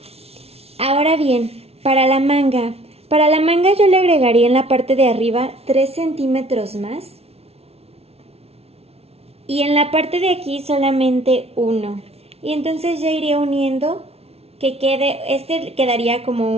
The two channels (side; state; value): left; late; 0.30 ms